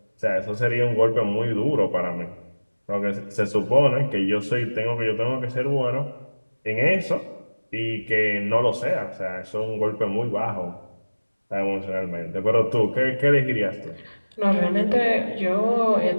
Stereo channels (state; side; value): inverted; both; correlation -1.00